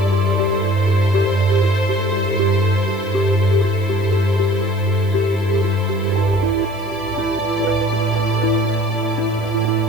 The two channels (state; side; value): noise; right; hiss, 25 dB below the sound